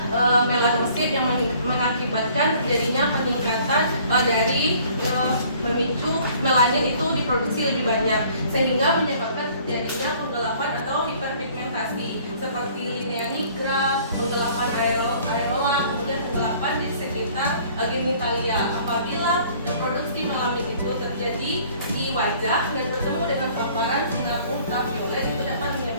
melanosit yang mengakibatkan terjadinya peningkatan dari memicu melanin itu diproduksi lebih banyak sehingga menyebabkan terjadinya penggelapan atau hiperpigmentasi seperti linea nigra, penggelapan areola, kemudian penggelapan di sekitar genitalia. Apabila produksi melanin itu terjadi di wajah dan bertemu dengan paparan sinar ultraviolet, itu dapat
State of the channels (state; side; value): inverted; both; correlation -0.55